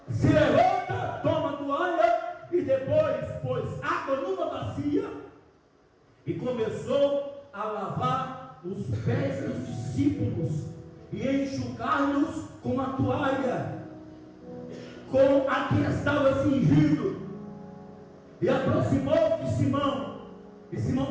se levanta, toma a toalha e depois pôs água numa bacia e começou a lavar os pés dos discípulos e enxugar-los com a toalha. com a que estava cingido, e aproximou-se de Simão, e Simão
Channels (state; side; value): identical; both; correlation 1.00